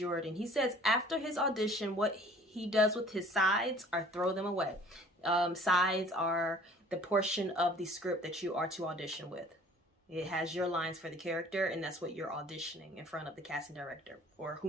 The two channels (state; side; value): normal; both; correlation 0.51